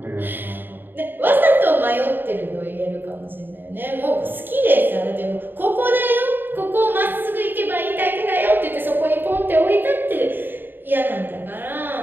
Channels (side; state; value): left; late; 0.094 ms